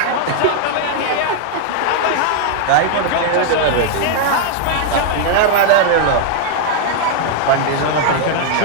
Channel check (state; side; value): different; both; correlation 0.00